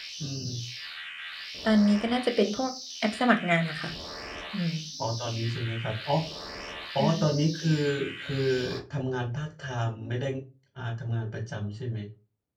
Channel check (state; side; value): identical; both; correlation 1.00